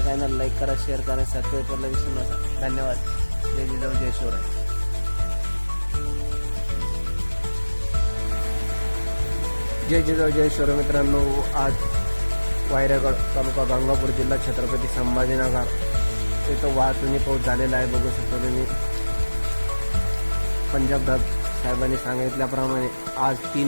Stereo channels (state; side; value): inverted; both; correlation -1.00